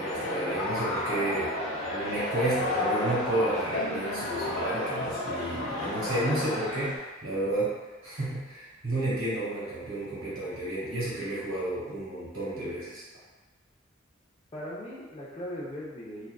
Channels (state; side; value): normal; both; correlation 0.33